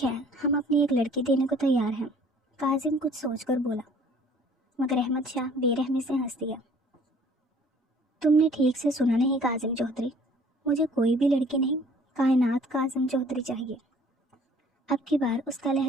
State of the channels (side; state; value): both; normal; correlation 0.54